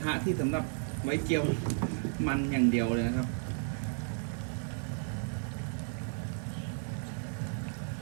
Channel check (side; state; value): left; silent; 55 dB below the other